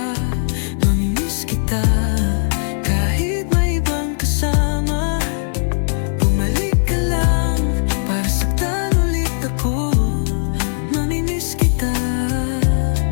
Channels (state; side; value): silent; right; 67 dB below the other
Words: Mamimiss kita kahit may ibang kasama. Bumalik ka lang para saktan ulit ako. Mamimiss kita,